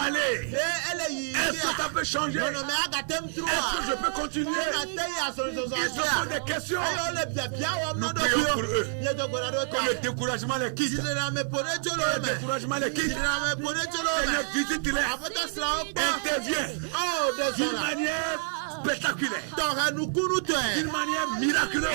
aller? Est-ce que ça peut changer? Est-ce que je peux continuer? Ils se posent des questions. Nous prions pour eux. Que le découragement les quitte. Que le découragement les quitte. Seigneur, visite-les. Interviens d'une manière spectaculaire. D'une manière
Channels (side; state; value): left; silent; digital silence